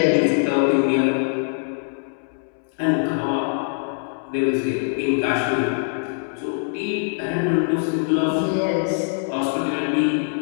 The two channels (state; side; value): silent; right; 64 dB below the other